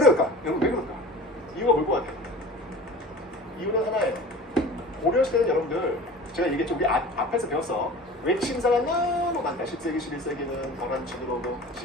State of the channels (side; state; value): both; normal; correlation 0.39